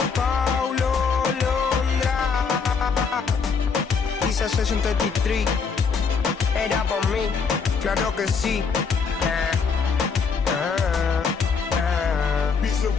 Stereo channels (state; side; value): quieter; right; 5.4 dB